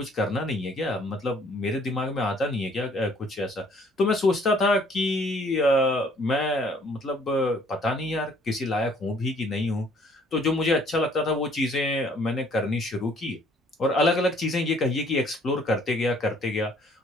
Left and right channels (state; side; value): normal; both; correlation 0.60